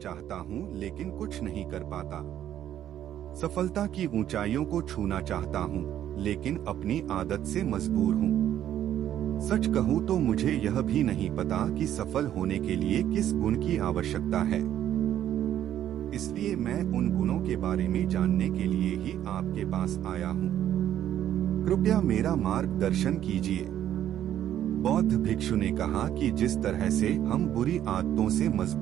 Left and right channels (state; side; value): quieter; left; 11.1 dB